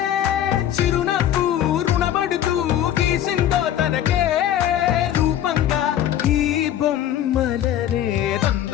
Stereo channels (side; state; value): right; quieter; 11.2 dB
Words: చిరునవ్వు రుణపడుతూ గీసిందో తనకే రూపంగా ఈ బొమ్మలనే.